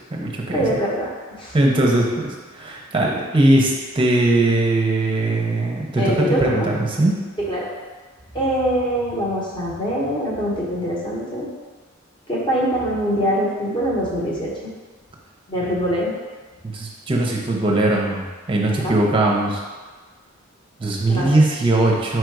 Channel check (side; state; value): both; normal; correlation 0.64